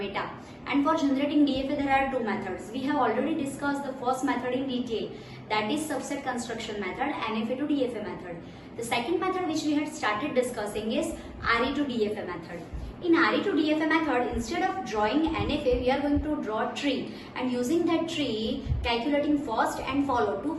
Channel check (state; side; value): identical; both; correlation 1.00